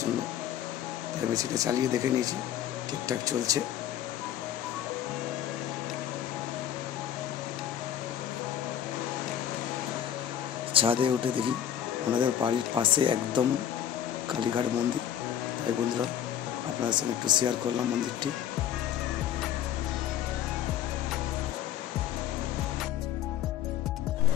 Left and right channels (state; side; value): quieter; right; 10.4 dB